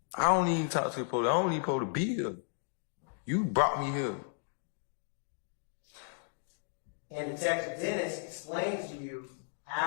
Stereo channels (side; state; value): right; silent; digital silence